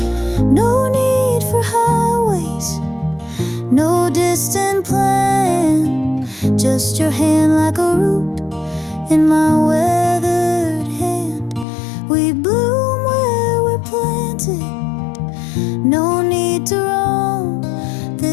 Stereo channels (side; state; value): right; drops out; at 11.7 s